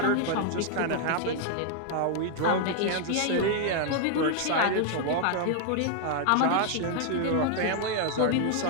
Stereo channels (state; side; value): different; both; correlation 0.00